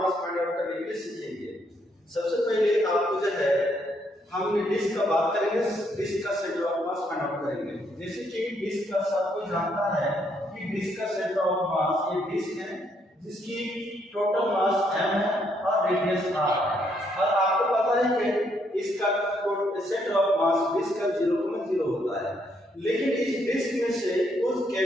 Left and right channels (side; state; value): both; normal; correlation 0.73